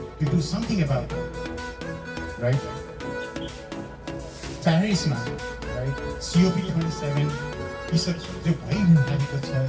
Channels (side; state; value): both; identical; correlation 1.00